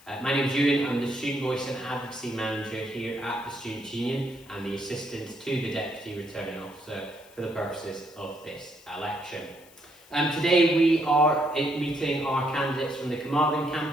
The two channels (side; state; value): left; noise; hiss, 25 dB below the sound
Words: My name is Ewan, I'm the Student Voice and Advocacy Manager here at the Students' Union and the Assistant to the Deputy Returning Officer for the purposes of this election. Today we are meeting our candidates from the Carmarthen